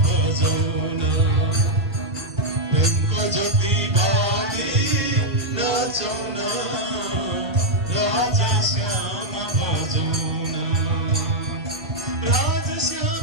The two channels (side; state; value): both; normal; correlation -0.03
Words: भजौना ढुङ्को ज्योति बाली नाचौना राजश्याम भजौना